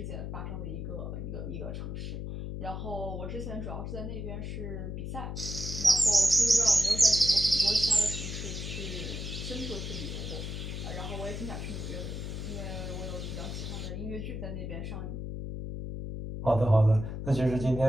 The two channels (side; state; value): left; noise; hum, 5 dB below the sound